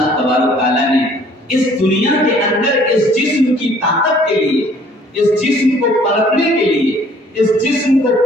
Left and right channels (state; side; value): normal; both; correlation 0.57